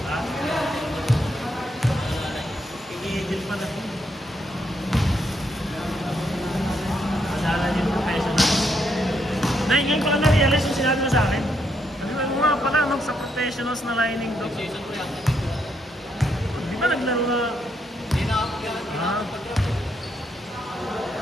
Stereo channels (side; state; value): both; normal; correlation 0.77